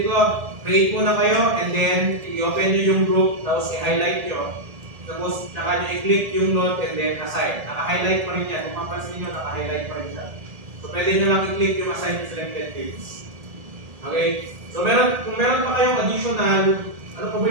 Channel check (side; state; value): left; late; 1.7 ms